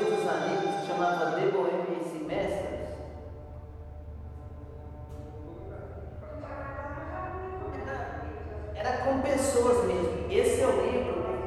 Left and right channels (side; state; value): both; identical; correlation 1.00